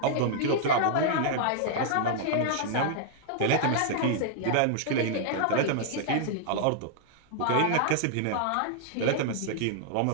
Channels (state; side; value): different; both; correlation -0.01